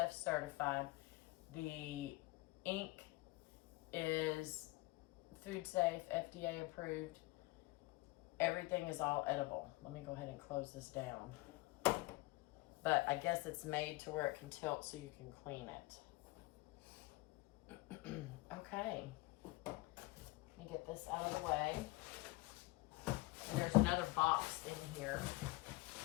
certified. The ink is food safe, FDA approved. Everything is all edible. Let me go ahead and close this down. But I guess it's made to where it can tilt so you can clean it. Okay. Let me get this out of the way. And there's another box in here.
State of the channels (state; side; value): quieter; right; 21.8 dB